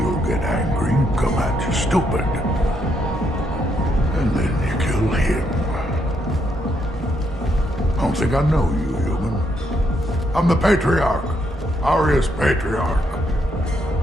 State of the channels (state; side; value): normal; both; correlation 0.76